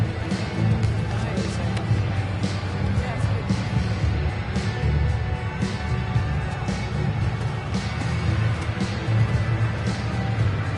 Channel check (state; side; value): identical; both; correlation 1.00